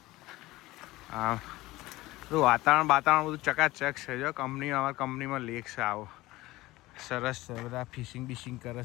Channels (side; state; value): right; quieter; 18.7 dB